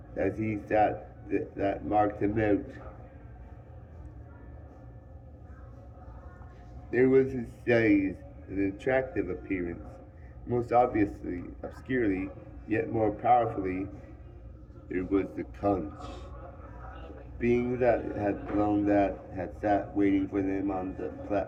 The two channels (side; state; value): both; identical; correlation 1.00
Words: as he sat that marked him out. There was his size, an attractive appearance, most obviously, obscurely, yet more powerfully, there was the conch. Being that had sat waiting for them on the